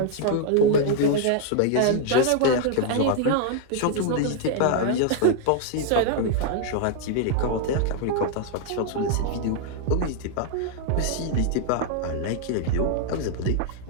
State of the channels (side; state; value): both; different; correlation -0.01